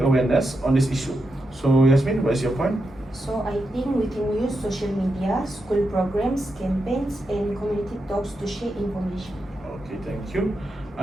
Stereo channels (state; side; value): normal; both; correlation 0.86